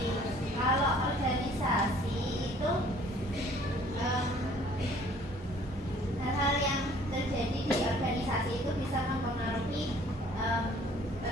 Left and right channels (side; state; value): both; normal; correlation 0.56